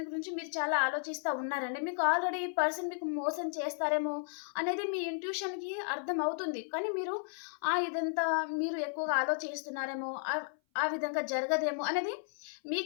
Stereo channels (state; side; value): silent; right; 55 dB below the other